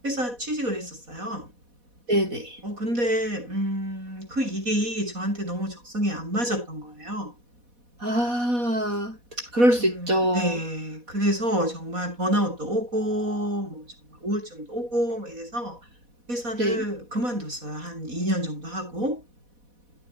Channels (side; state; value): left; late; 4.1 ms